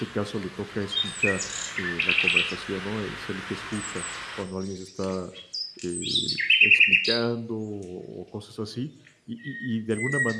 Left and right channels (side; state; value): both; identical; correlation 1.00